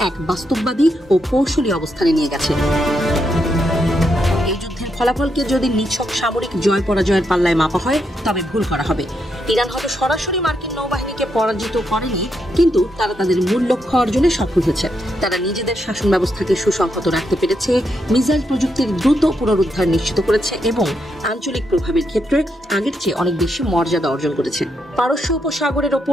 এক বাস্তববাদী ও কৌশলী অবস্থানে নিয়ে গেছে। ফলাফলকে যদি নিছক সামরিক জয় পরাজয়ের পাল্লায় মাপা হয় তবে ভুল করা হবে। ইরান হয়তো সরাসরি মার্কিন নৌবাহিনীকে পরাজিত করেনি, কিন্তু তারা তাদের মূল লক্ষ্য অর্জনে সফল হয়েছে। তারা নিজেদের শাসন ব্যবস্থাকে সুসংহত রাখতে পেরেছে, মিসাইল প্রযুক্তির দ্রুত পুনরুদ্ধার নিশ্চিত করেছে এবং আঞ্চলিক প্রভাবের ক্ষেত্রে আগের চেয়ে অনেক বেশি মর্যাদা অর্জন করেছে। পারস্য উপসাগরের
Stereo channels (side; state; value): both; normal; correlation 0.80